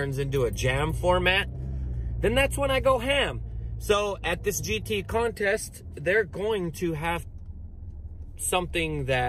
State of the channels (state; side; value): identical; both; correlation 1.00